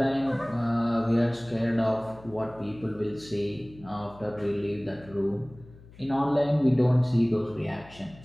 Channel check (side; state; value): left; noise; hum, 22 dB below the sound